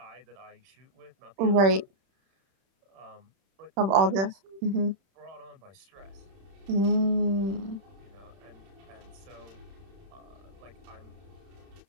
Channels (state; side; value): late; left; 31 ms